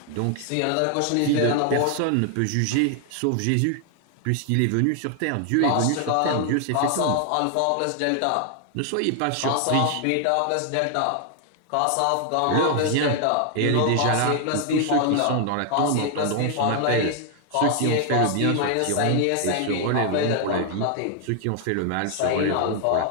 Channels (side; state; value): both; different; correlation 0.00